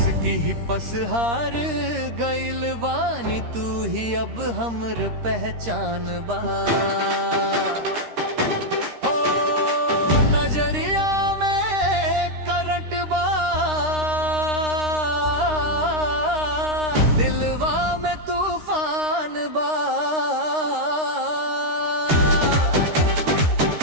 ही पसहार गइल बानी, तू ही अब हमर पहचान बा। हो नजरिया में करंट बा, दिलवा में तूफान बा।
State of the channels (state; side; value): late; left; 13 ms